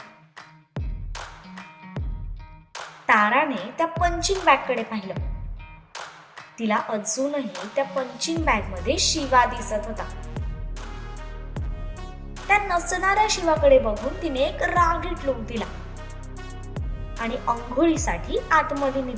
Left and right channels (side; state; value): both; identical; correlation 1.00